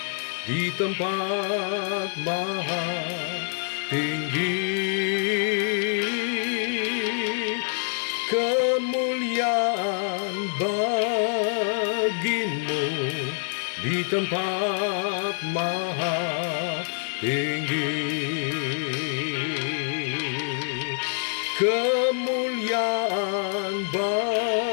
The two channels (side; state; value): right; silent; digital silence